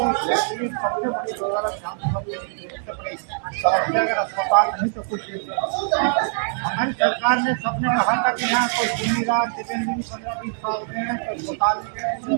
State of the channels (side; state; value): left; silent; 63 dB below the other